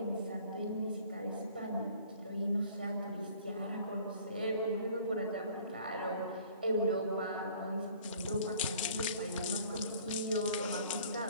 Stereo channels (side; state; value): both; inverted; correlation -0.52